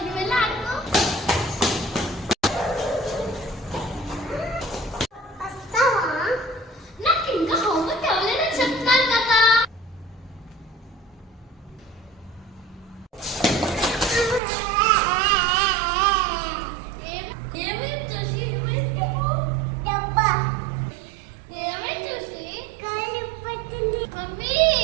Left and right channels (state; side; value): drops out; left; at 14.4 s